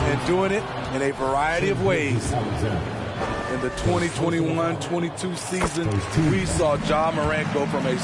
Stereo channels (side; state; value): both; identical; correlation 1.00